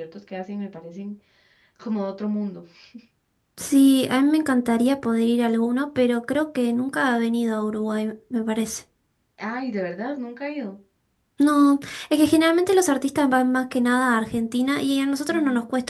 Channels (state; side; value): identical; both; correlation 1.00